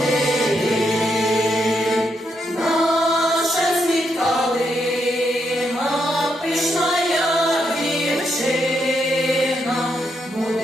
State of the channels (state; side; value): normal; both; correlation 0.79